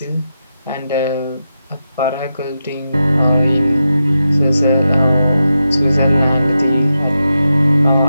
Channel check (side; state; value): both; inverted; correlation -0.88